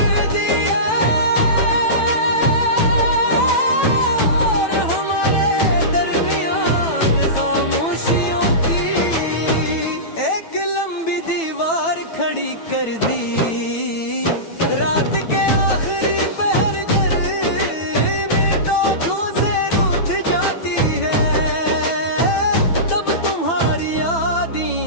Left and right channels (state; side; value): late; right; 9.1 ms